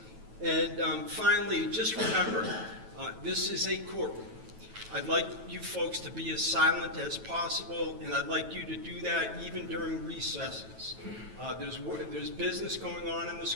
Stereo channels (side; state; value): left; late; 9.2 ms